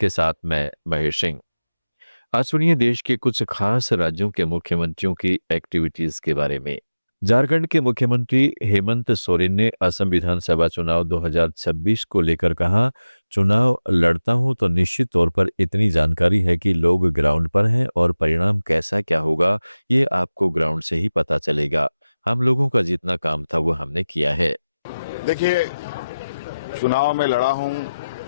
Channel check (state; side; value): inverted; both; correlation -0.96